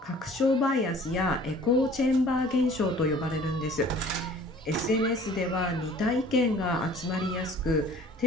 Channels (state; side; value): normal; both; correlation 0.50